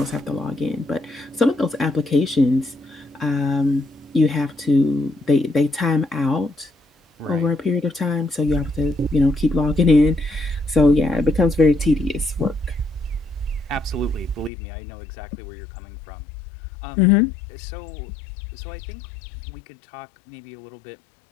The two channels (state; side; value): drops out; right; at 14.5 s